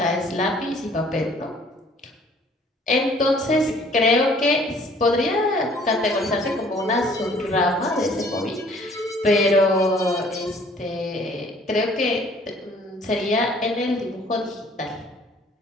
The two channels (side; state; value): both; normal; correlation 0.56